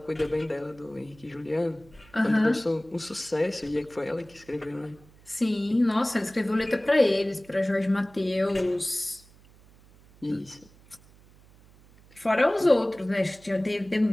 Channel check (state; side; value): noise; right; hum, 26 dB below the sound